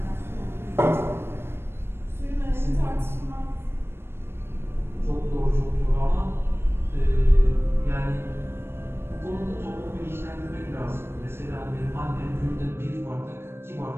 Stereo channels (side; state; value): left; late; 0.12 ms